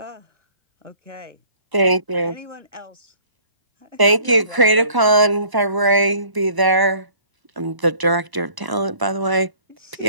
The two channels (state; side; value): late; left; 1.0 ms